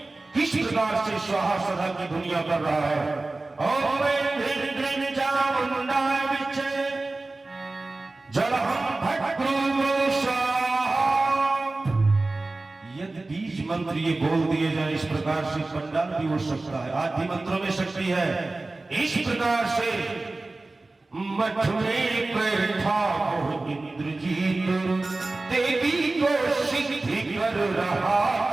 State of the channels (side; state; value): left; quieter; 3.2 dB